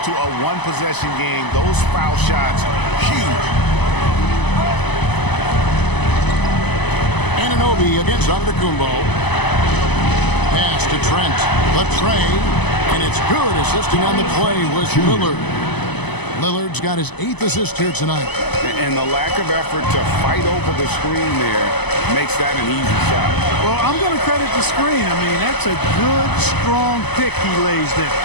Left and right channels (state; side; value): late; right; 0.99 ms